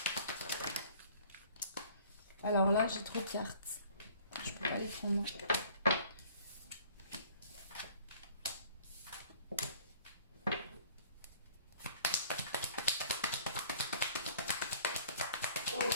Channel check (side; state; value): both; inverted; correlation -0.53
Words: Alors là, j'ai trop de cartes. Je peux pas les prendre.